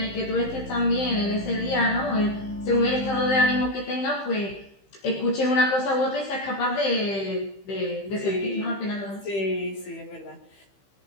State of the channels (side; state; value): right; late; 15 ms